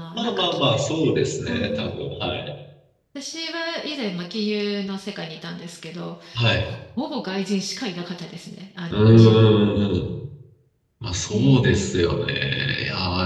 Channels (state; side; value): identical; both; correlation 1.00